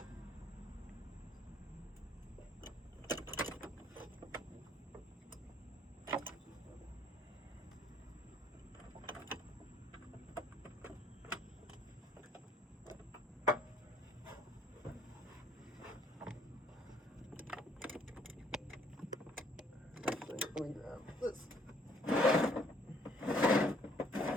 Let me grab this.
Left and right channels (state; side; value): normal; both; correlation 0.63